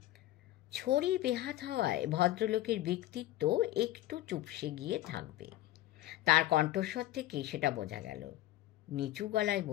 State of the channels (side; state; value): right; quieter; 15.4 dB